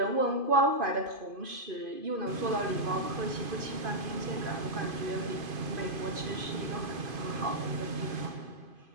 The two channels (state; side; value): late; left; 2.5 ms